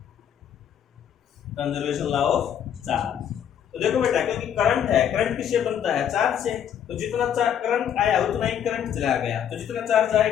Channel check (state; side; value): quieter; right; 9.2 dB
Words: Conservation law of charge. तो देखो बेटा, क्योंकि करंट है, करंट किससे बनता है, चार्ज से। तो जितना करंट आया उतना ही करंट चला गया, तो जितना चार्ज